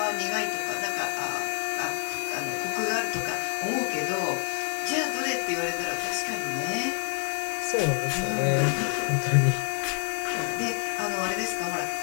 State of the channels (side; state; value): right; quieter; 39.3 dB